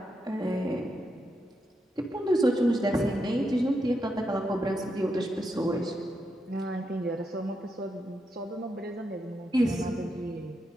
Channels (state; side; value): normal; both; correlation 0.84